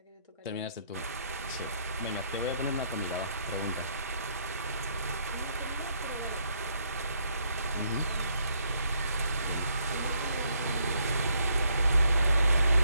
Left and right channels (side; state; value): both; inverted; correlation -0.72